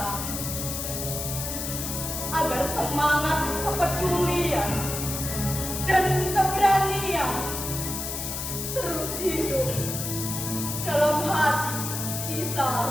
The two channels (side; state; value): left; noise; hiss, 4 dB below the sound